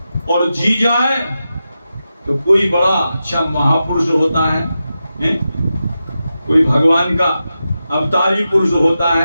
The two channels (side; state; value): both; inverted; correlation -0.90